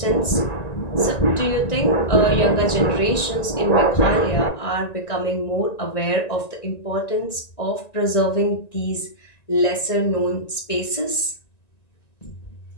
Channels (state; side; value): late; right; 1.9 ms